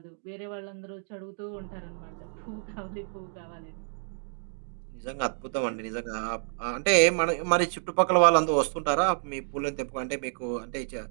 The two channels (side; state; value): left; silent; digital silence